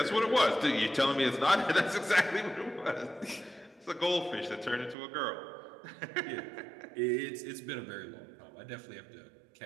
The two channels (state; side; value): drops out; left; at 5.0 s